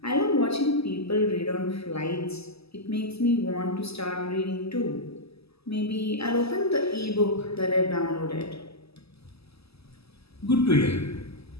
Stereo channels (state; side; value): late; right; 0.78 ms